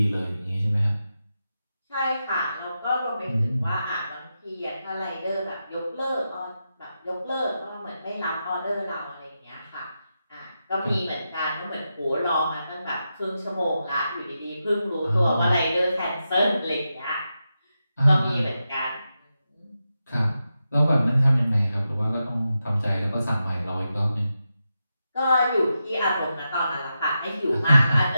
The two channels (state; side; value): inverted; both; correlation -0.88